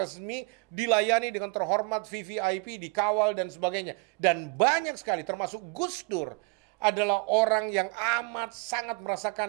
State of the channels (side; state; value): left; quieter; 30.0 dB